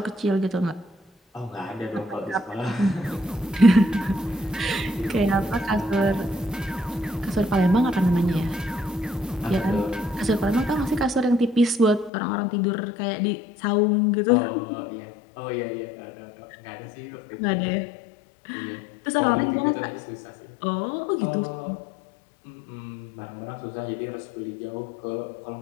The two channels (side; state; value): right; drops out; at 12.1 s